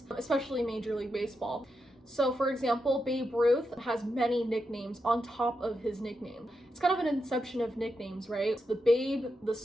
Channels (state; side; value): normal; both; correlation 0.86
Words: especially Major League Baseball. So for example, Babe Ruth has many nicknames on top of his nickname. It's kind of an inception of nicknames, right? It's the Babe, the